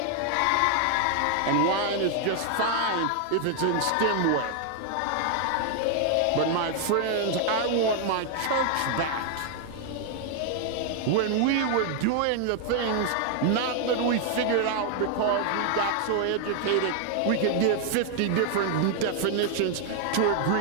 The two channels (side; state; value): both; different; correlation 0.00